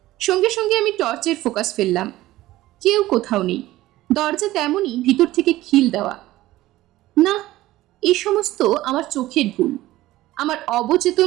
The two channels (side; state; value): left; quieter; 16.4 dB